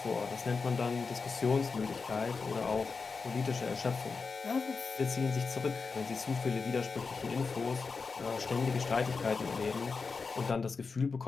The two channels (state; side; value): quieter; right; 4.8 dB